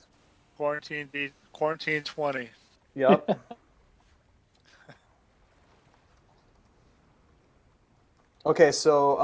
Quarantine 20. Yep. Okay,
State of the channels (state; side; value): identical; both; correlation 1.00